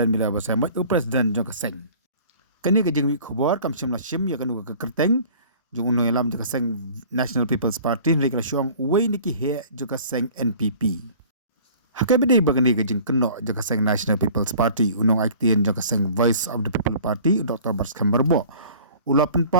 mila basai mai president jong kaseng. Kani gajing wi khubor kam shimla shim yakanu ka kerteng jong uno yalam jong kaseng National People's Party ni kala syong wei niki he jong kaseng NPP. Hakai bedai bagani gajing keno jong kaseng National People's Party unong aktien jong kaseng Voice of the People Party Dr. Barskamberbo. Ulapan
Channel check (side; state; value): both; inverted; correlation -0.47